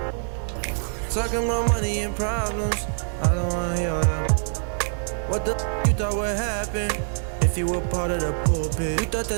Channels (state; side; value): silent; left; digital silence